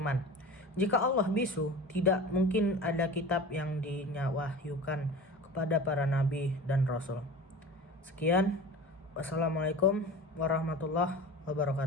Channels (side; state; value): both; normal; correlation 0.36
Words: Jika Allah bisu, tidak mungkin ada kitab yang dinyawahyukan kepada para nabi dan rasul. Sekian, wassalamualaikum warahmatullahi